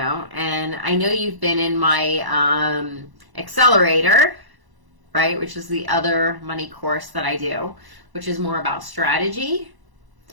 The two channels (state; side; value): late; left; 1.0 ms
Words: And I know you've been in my accelerator, right, which is the other money course that I do, which is more about strategy,